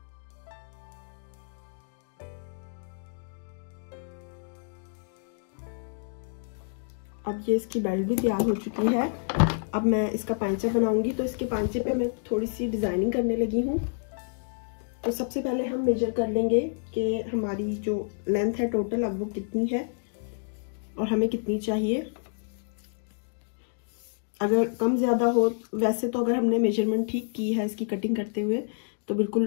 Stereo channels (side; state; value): right; silent; digital silence